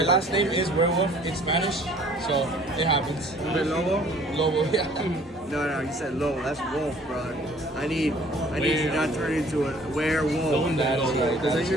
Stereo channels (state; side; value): normal; both; correlation 0.54